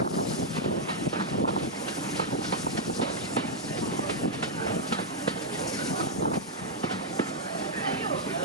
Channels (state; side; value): normal; both; correlation -0.04